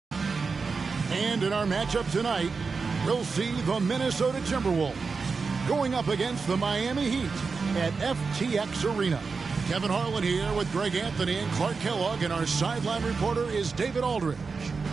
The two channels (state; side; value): quieter; left; 4.8 dB